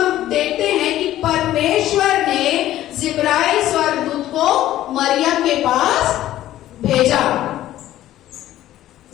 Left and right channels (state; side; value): quieter; right; 13.7 dB